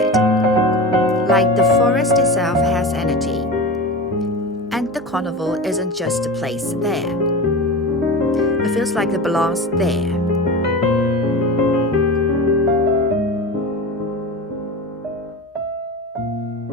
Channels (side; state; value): both; normal; correlation 0.28